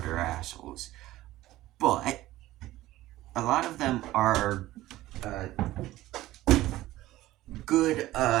assholes. But a lot of them are uh, good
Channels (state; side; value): quieter; left; 16.1 dB